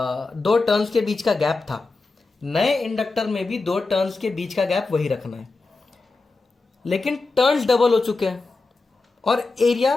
टर्न्स के बीच का गैप था, नए इंडक्टर में भी 2 टर्न्स के बीच का गैप वही रखना है। लेकिन टर्न्स डबल हो चुके हैं और एरिया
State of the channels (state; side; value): quieter; right; 3.7 dB